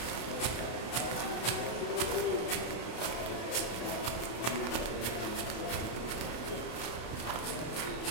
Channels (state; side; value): late; right; 33 ms